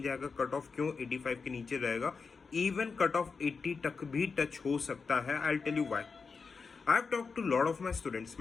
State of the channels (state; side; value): quieter; right; 5.0 dB